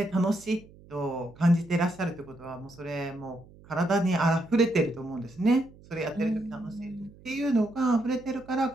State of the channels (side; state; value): right; noise; hum, 23 dB below the sound